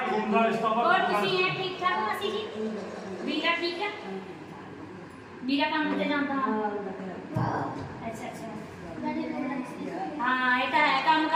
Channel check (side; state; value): both; identical; correlation 1.00